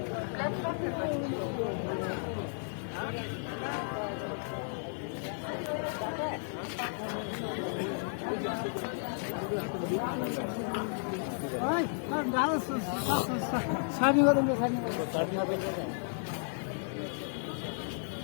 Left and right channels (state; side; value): silent; right; 55 dB below the other